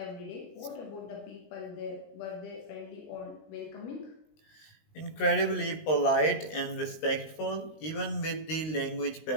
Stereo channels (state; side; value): late; right; 19 ms